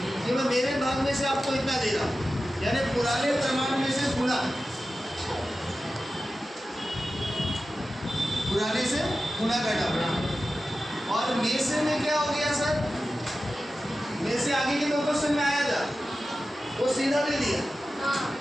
कि मैं मेरे भाग में से आपको इतना दे रहा हूँ, यानी पुराने प्रमाण में से गुणा, पुराने से गुणा करना पड़ेगा। और में से में क्या हो गया सर, में से आगे के 2 क्वेश्चन में आया था, वो सीधा दे दिया,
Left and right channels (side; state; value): both; normal; correlation 0.94